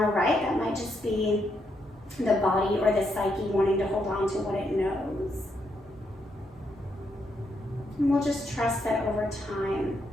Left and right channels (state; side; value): normal; both; correlation 0.78